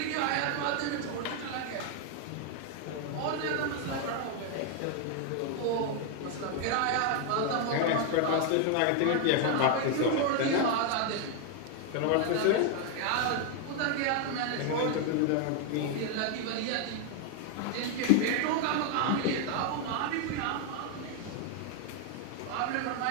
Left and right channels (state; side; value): different; both; correlation 0.00